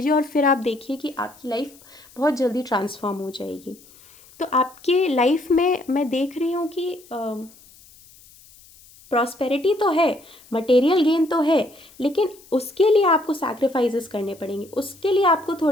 और फिर आप देखिए कि आपकी लाइफ बहुत जल्दी ट्रांसफॉर्म हो जाएगी। तो आपके लाइफ में मैं देख रही हूँ कि प्रॉस्पेरिटी तो है, मटेरियल गेन तो है, लेकिन उसके लिए आपको सैक्रिफाइसेस करने पड़ेंगे, उसके लिए आपको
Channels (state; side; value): noise; left; hiss, 25 dB below the sound